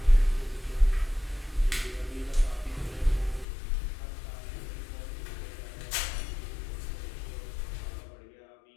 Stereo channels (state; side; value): drops out; right; at 3.5 s